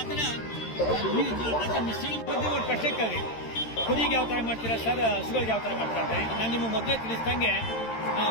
ಥರ ಮಿಶ್ರಣ ಒಂದು ಪ್ರಶ್ನೆಕ್ಕಾಗಿ ಕುರಿಗೆ ಯಾವ ಥರ ಮಾಡ್ತೀರಾ ಸರ್, ಹಸುಗಳಿಗೆ ಯಾವ ಥರ ಮಾಡ್ತಾರೆ? ನಾನು ನಿಮ್ಮ ಮೊದಲೇ ತಿಳಿಸ್ದಂಗೆ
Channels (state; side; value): late; right; 13 ms